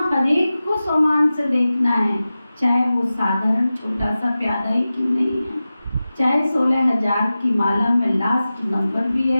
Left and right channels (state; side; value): inverted; both; correlation -0.95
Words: हर एक को सोमान से देखना है, चाहे वो साधारण छोटा सा प्यादा ही क्यों नहीं है, चाहे 16,000 की माला में लास्ट नंबर भी